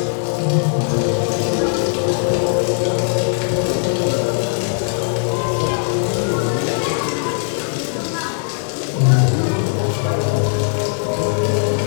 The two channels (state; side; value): silent; right; 56 dB below the other